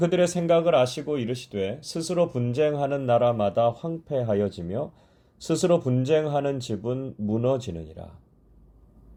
생각을 아시고 이르시되 스스로 분쟁하는 나라마다 황폐하여지며 스스로 분쟁하는 집은 무너지느니라.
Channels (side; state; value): both; identical; correlation 1.00